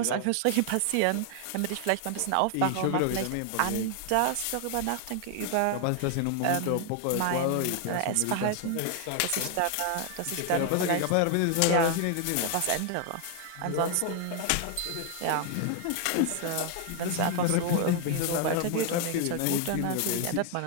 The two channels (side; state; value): both; different; correlation 0.00